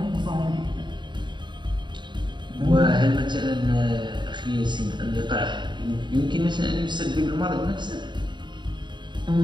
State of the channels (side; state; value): left; late; 0.22 ms